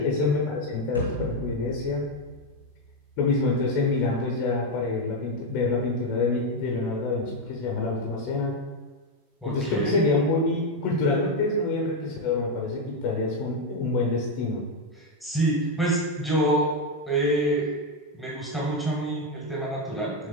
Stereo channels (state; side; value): normal; both; correlation 0.05